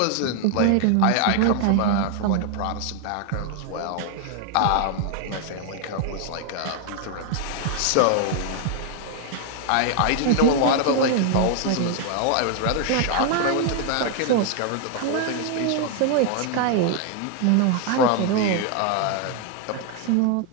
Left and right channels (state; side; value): different; both; correlation 0.00